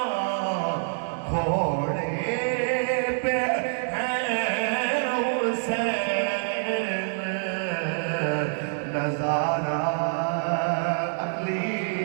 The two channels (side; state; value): left; silent; digital silence